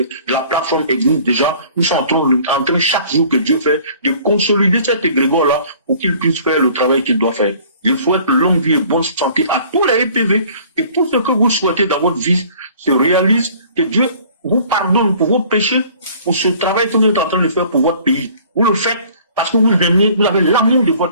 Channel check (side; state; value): both; inverted; correlation -0.52